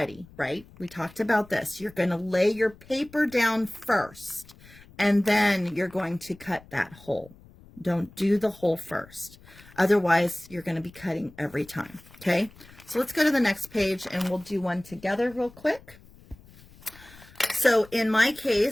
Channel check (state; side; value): noise; left; rumble, 23 dB below the sound